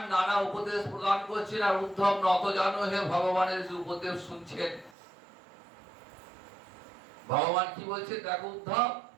নানা উপদেশ প্রদান করছেন, আর উদ্ধব নত জানো হে ভগবানের উপদেশ শুনছেন। ভগবান কি বলছেন দেখো উদ্ধব,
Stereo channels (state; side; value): drops out; left; at 5.0 s